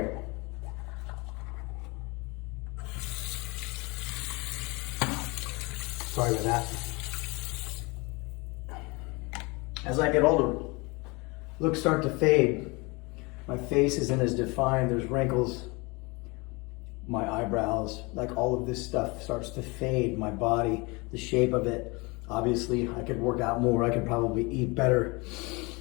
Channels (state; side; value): quieter; right; 26.7 dB